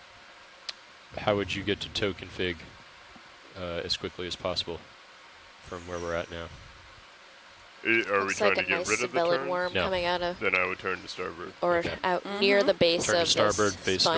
how would you get to tow config as quickly as possible from where we're at now? Are we Looks trying like to a get nice rid of the sabellid turns? worm No. coming out of, Then I would turn to starboard. or Okay. out near the base Turn to of starboard, this face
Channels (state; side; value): identical; both; correlation 1.00